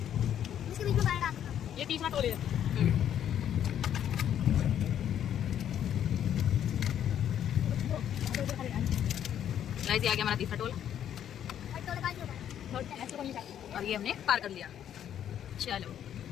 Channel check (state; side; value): quieter; right; 10.0 dB